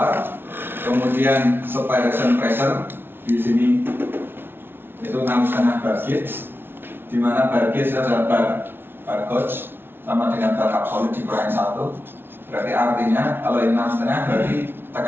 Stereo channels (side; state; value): left; late; 0.11 ms